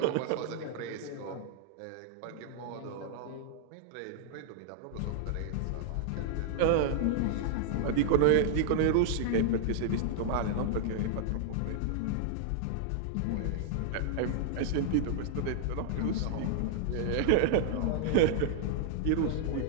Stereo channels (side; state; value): both; different; correlation -0.01